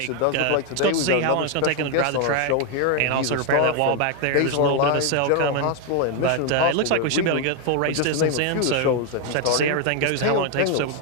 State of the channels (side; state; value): both; different; correlation 0.01